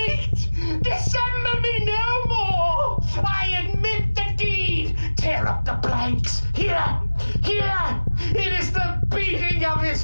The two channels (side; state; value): both; inverted; correlation -1.00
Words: Dissemble me no more! I admit the deed! Tear up the blanks! Here! Here! It is the beating of his